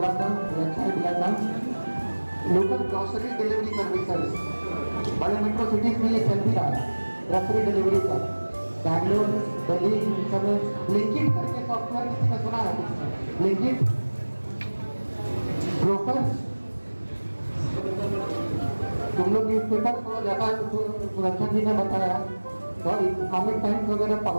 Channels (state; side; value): inverted; both; correlation -1.00